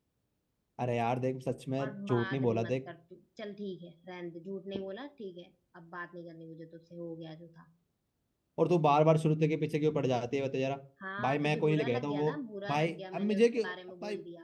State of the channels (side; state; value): both; identical; correlation 1.00